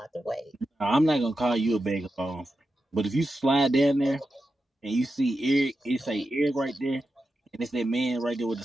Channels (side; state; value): both; normal; correlation 0.90